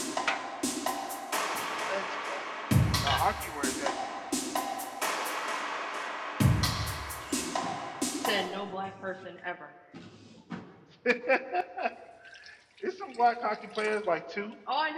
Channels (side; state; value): both; identical; correlation 1.00